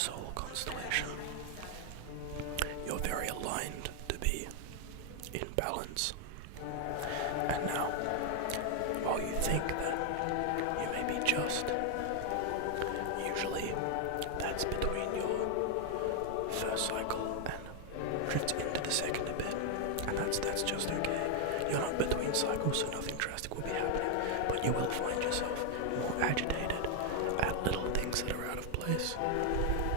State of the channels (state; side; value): different; both; correlation 0.00